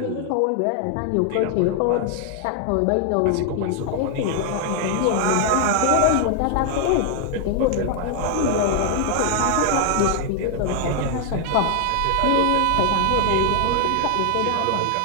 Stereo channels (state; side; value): different; both; correlation 0.00